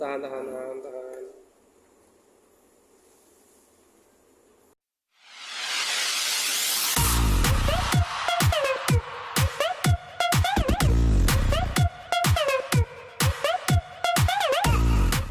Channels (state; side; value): identical; both; correlation 1.00